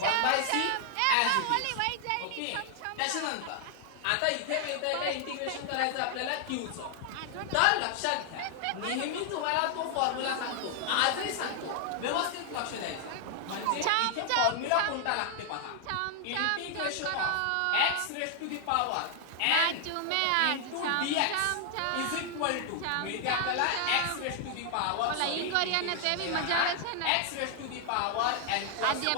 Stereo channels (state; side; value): different; both; correlation 0.00